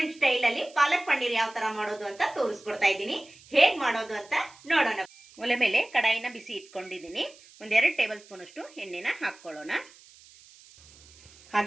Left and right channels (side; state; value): right; noise; hiss, 24 dB below the sound